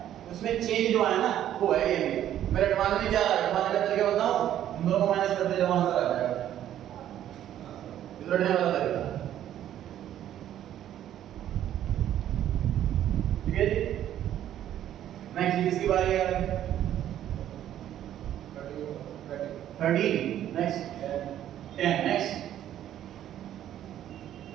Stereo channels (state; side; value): quieter; left; 11.4 dB